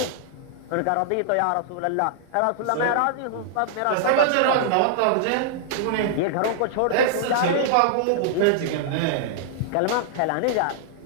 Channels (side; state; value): both; different; correlation -0.01